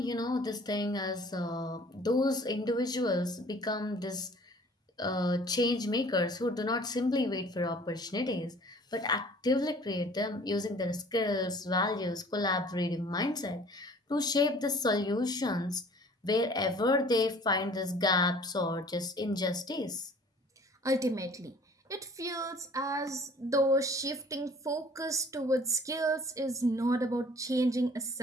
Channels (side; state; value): both; normal; correlation 0.50